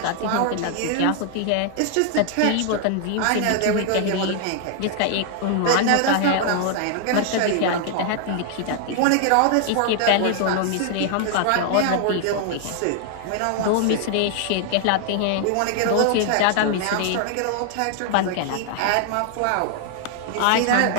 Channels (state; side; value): different; both; correlation 0.00